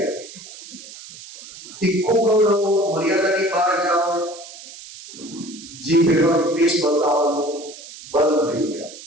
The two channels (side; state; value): right; noise; hiss, 16 dB below the sound